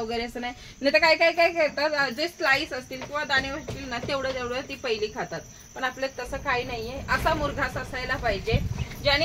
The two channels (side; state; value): both; identical; correlation 1.00